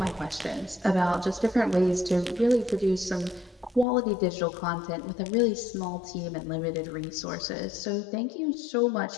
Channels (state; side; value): drops out; right; at 3.9 s